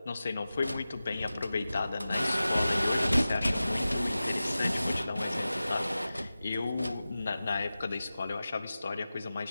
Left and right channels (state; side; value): inverted; both; correlation -0.95